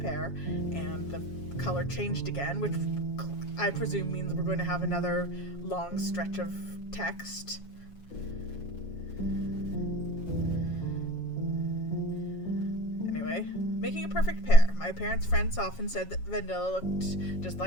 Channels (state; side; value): late; right; 7.2 ms